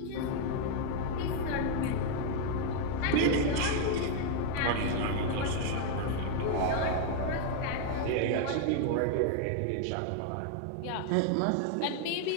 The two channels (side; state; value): both; different; correlation 0.00